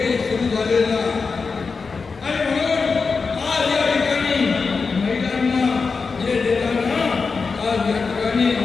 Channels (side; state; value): right; quieter; 4.8 dB